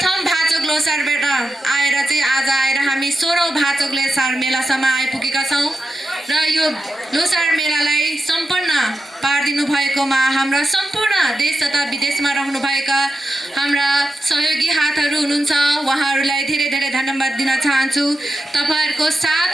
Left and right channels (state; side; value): normal; both; correlation 0.90